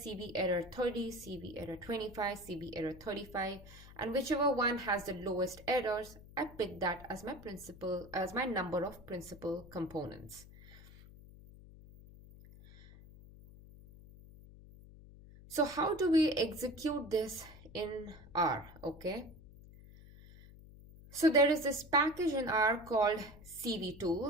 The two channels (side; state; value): left; noise; hum, 19 dB below the sound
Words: error 30, CV error 25, CV error 35, and whichever one has the lowest errors, I pick that as my number of principal components. So how do we execute this in R, okay? So there is this package in R called CV